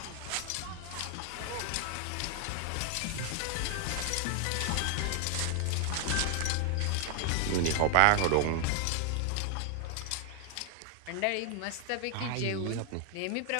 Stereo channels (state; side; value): different; both; correlation 0.00